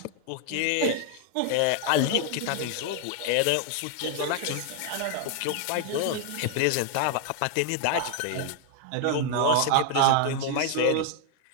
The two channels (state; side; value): different; both; correlation 0.00